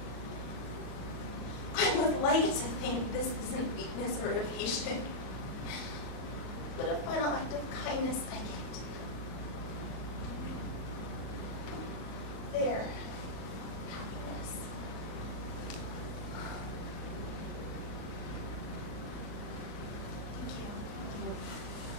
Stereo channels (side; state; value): right; late; 38 ms